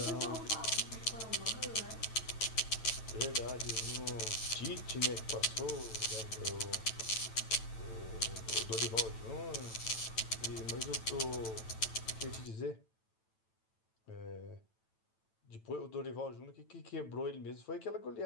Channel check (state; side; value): late; right; 9.0 ms